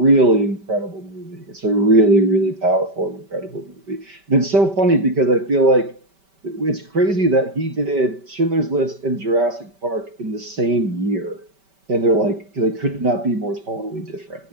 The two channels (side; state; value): left; late; 5.2 ms